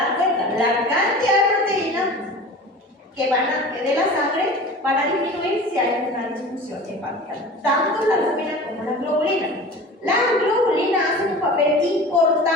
cuenta, la cantidad de proteínas que de la sangre van a disminuir si hay una disfunción hepática, tanto la albúmina como las globulinas. Las globulinas hacen un papel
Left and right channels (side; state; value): both; normal; correlation 0.37